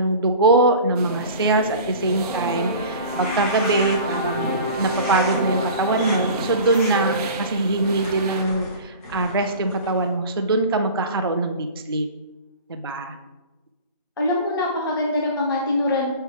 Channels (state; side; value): inverted; both; correlation -0.39